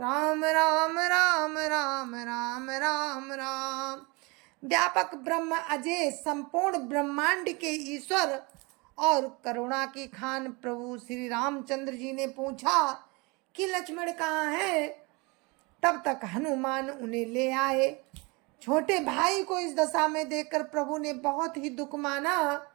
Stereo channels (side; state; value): left; quieter; 27.4 dB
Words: राम राम राम राम राम राम। व्यापक ब्रह्म अजय संपूर्ण ब्रह्मांड के ईश्वर और करुणा की खान प्रभु श्री रामचंद्र जी ने पूछा कि लक्ष्मण कहाँ है। तब तक हनुमान उन्हें ले आए। छोटे भाई को इस दशा में देखकर प्रभु ने बहुत ही दुख माना।